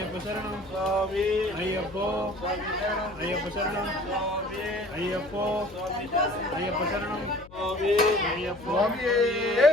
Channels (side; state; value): left; noise; hum, 20 dB below the sound